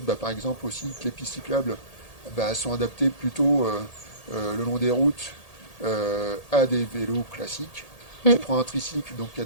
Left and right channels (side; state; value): right; late; 1.8 ms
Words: bah, par exemple aussi, que les pistes cyclables bah, sont adaptées plutôt le long des routes à des vélos classiques. Mm. Tu prends un tricycle, donc il y a